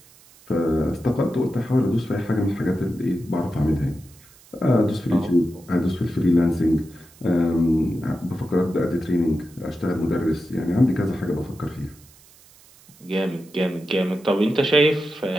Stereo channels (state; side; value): noise; right; hiss, 26 dB below the sound